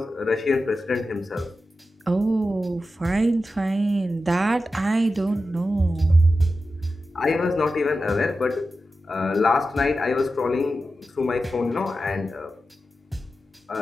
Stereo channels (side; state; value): both; normal; correlation 0.92